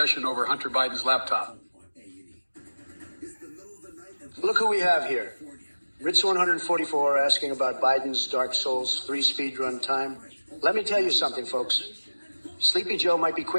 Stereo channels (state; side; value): inverted; both; correlation -1.00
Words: over Hunter Biden's laptop? Look who we have here. Ritz 144 asking about Biden's Dark Souls 3 speedrun time. Let me tell you something, folks. Sleepy Joe might be